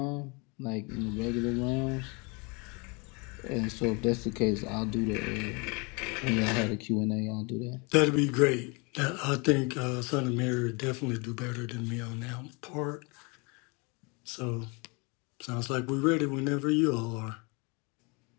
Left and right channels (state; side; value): quieter; right; 30.5 dB